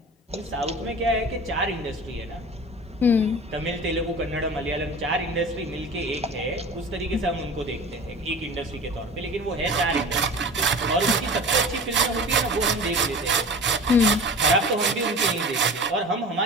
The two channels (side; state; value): both; normal; correlation 0.37